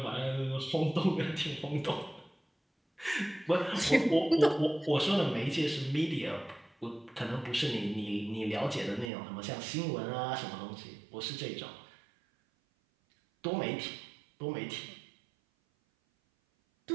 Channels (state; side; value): drops out; left; at 9.1 s